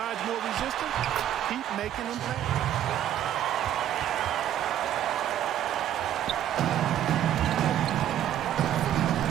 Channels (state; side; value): quieter; left; 11.2 dB